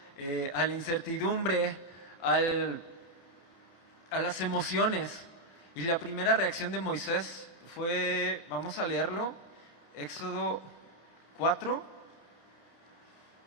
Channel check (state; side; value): late; right; 30 ms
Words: a la incertidumbre, a las emociones. Y la primera reacción de Moisés fue, vamos a leerlo, Éxodo 4.